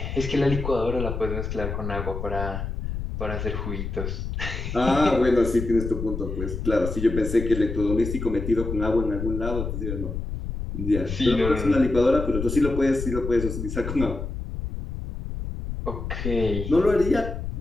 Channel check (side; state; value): left; noise; rumble, 5 dB below the sound